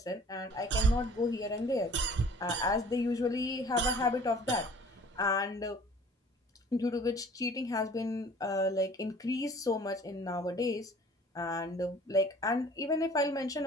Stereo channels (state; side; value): normal; both; correlation 0.50